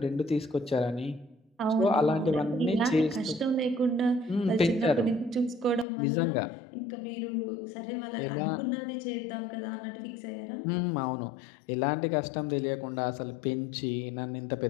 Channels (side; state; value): right; drops out; at 5.9 s